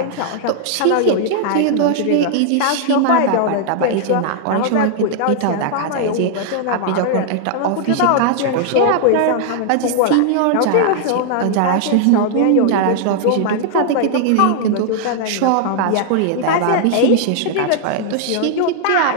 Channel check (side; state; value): both; different; correlation -0.01